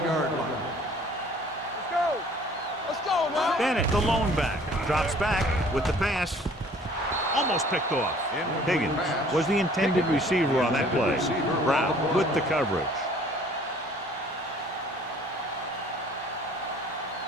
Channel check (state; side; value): normal; both; correlation 0.54